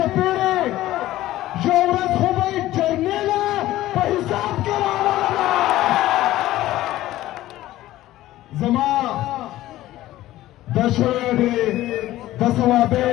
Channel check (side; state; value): right; quieter; 15.3 dB